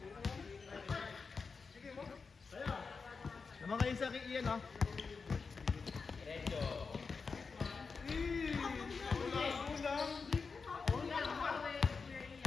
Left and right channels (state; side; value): quieter; right; 4.9 dB